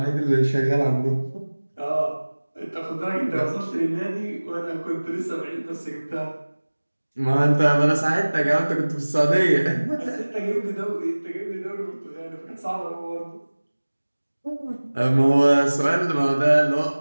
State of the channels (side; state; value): both; inverted; correlation -1.00